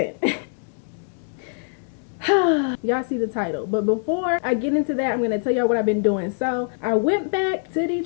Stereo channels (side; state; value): right; silent; digital silence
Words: Y'all see the title, but before I get into that, I'm gonna tell y'all what I've been doing. So I went back to